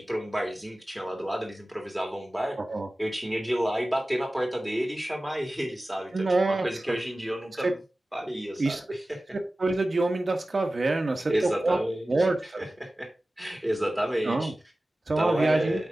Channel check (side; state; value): both; normal; correlation 0.96